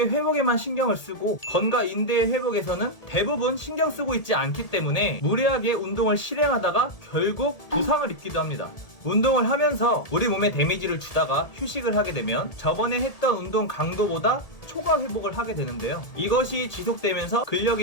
회복에만 신경을 쓰고 건과 인대의 회복에서는 대부분 신경 쓰고 있지 않기 때문에 무리하게 운동을 실행하다가 결국 부상을 입기도 합니다. 운동을 하면서 우리 몸에 데미지를 주다가 휴식을 하게 되면 저번에 했던 운동 강도보다 초과 회복을 하게 되는데요. 이것이 지속되면서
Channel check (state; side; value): late; right; 1.8 ms